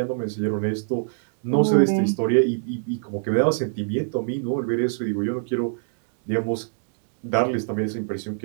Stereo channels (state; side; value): silent; left; digital silence